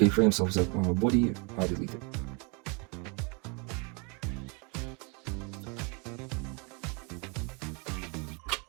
of the body are deleted.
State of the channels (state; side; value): quieter; left; 30.9 dB